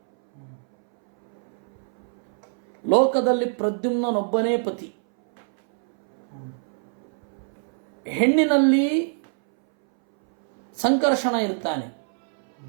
ಲೋಕದಲ್ಲಿ ಪ್ರದ್ಯುಮ್ನನೊಬ್ಬನೇ ಪತಿ. ಹೆಣ್ಣಿನಲ್ಲಿ ಸಂಕರ್ಷಣ ಇರ್ತಾನೆ,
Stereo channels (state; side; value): silent; left; 62 dB below the other